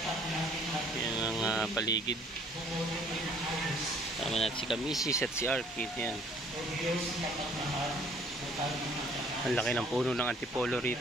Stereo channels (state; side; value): normal; both; correlation 0.58